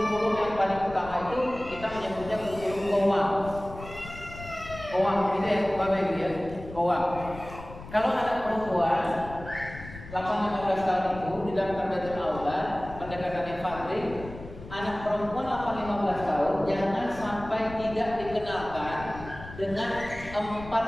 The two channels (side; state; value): left; noise; rumble, 14 dB below the sound